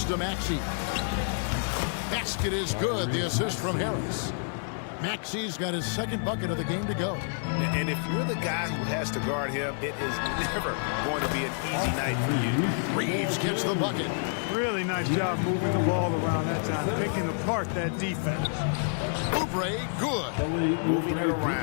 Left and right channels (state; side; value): silent; right; digital silence